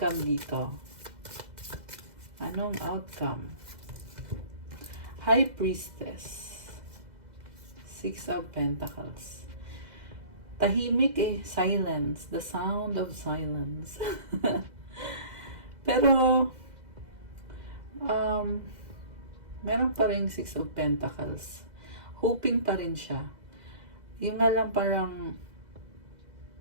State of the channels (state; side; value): late; left; 2.0 ms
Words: dito? Anong outcome? High Priestess. Six of Pentacles. Tahimik eh, silence. The sound of silence. Pero, meron pa rin Six of Pentacles. Hoping pa rin siya. Yung nga lang parang,